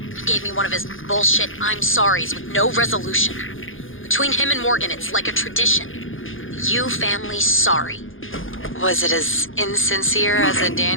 He gave me one of his bullshit I'm sorries with no resolution. Between him and Morgan, it's like a tradition. The Yu family's sorry. Was it as insincere as a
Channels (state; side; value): late; right; 0.58 ms